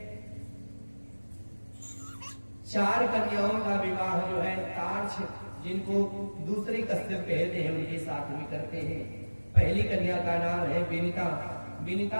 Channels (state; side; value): inverted; both; correlation -1.00